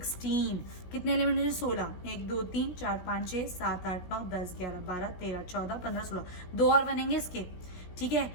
कितने एलिमेंट है 16, 1, 2, 3, 4, 5, 6, 7, 8, 9, 10, 11, 12, 13, 14, 15, 16। 2 और बनेंगे इसके। ठीक है,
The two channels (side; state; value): right; late; 17 ms